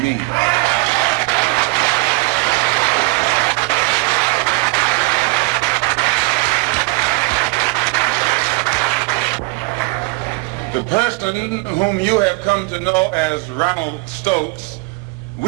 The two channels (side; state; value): left; quieter; 26.0 dB